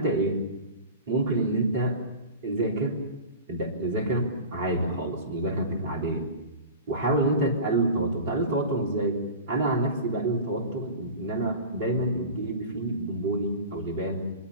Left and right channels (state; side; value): inverted; both; correlation -0.34